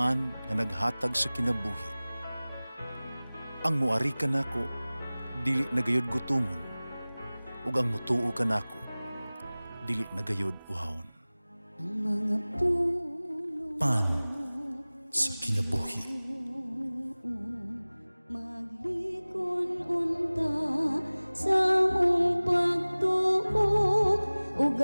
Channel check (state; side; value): inverted; both; correlation -0.99